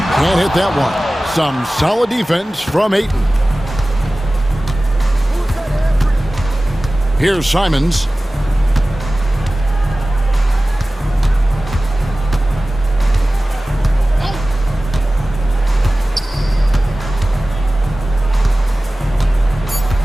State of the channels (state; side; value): normal; both; correlation 0.97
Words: Can't hit that one. Some solid defense from Ayton. Here's Simons.